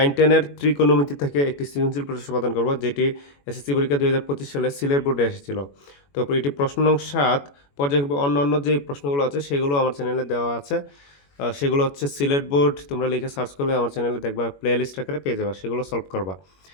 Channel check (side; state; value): right; late; 21 ms